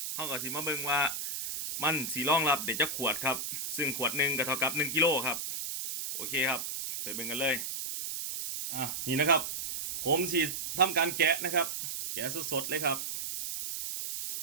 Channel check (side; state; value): right; noise; hiss, 4 dB below the sound